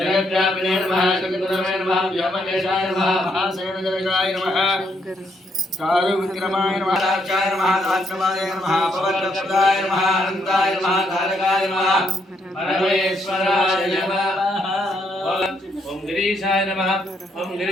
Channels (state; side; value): normal; both; correlation 0.74